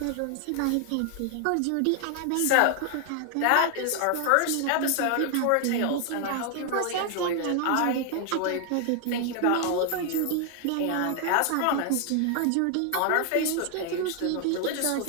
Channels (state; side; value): different; both; correlation 0.00